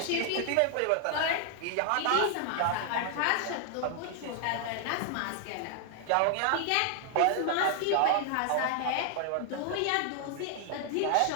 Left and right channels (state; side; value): different; both; correlation 0.00